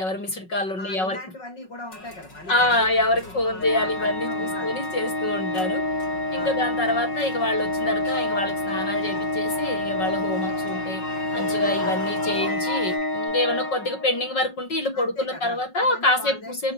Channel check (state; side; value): late; right; 5.4 ms